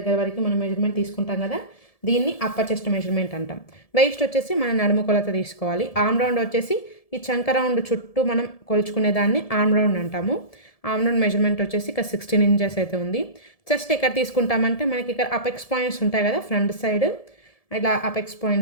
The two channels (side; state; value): right; late; 1.7 ms